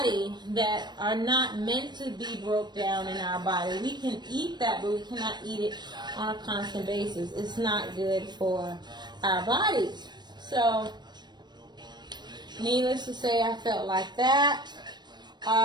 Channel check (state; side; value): late; left; 0.21 ms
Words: that are not meant to be broke down in our body. We can eat that, but we cannot eat it on a constant basis. It's not good for our bodies. So, needless to say, I felt like that.